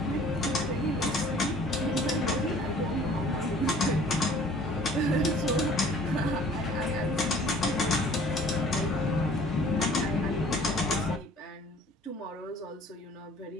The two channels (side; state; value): both; normal; correlation 0.52